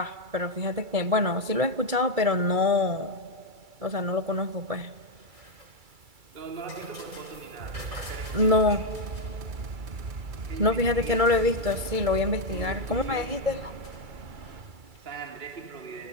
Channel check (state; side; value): late; left; 2.3 ms